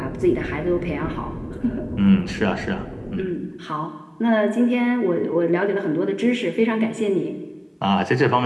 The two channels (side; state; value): both; identical; correlation 1.00